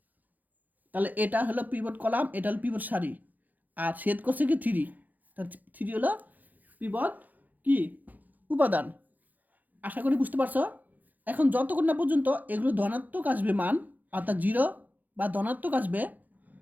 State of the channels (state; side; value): late; left; 0.082 ms